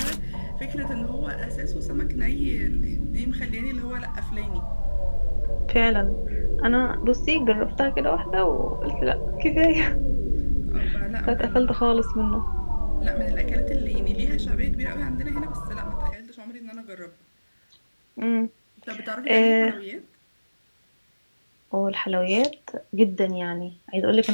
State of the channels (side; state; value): both; inverted; correlation -1.00